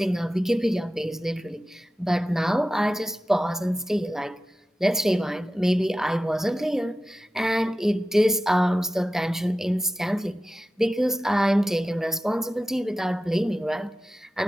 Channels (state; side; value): normal; both; correlation 0.94